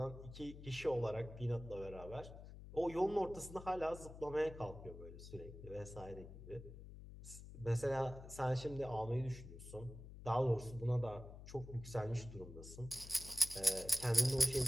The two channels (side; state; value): left; noise; hum, 13 dB below the sound